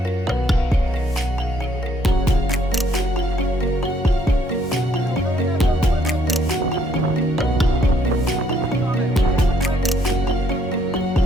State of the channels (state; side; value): normal; both; correlation 0.68